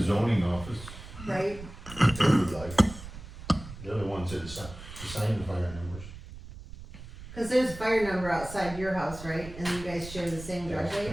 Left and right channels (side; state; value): right; noise; rumble, 14 dB below the sound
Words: zoning office, right? If you would like. they're the ones that assign the fire numbers. Cause there's a fire number outside your house, right, and you guys share the same There's, driveway?